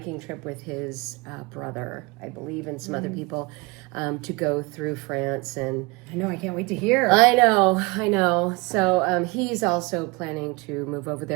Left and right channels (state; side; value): quieter; left; 26.4 dB